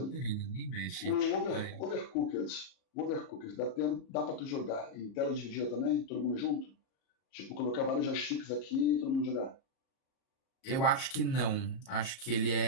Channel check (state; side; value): late; right; 38 ms